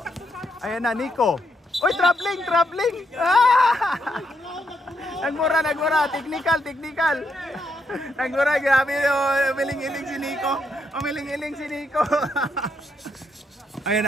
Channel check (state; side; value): normal; both; correlation 0.78